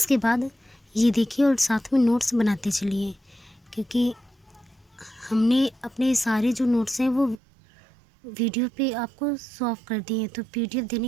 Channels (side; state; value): left; drops out; at 7.4 s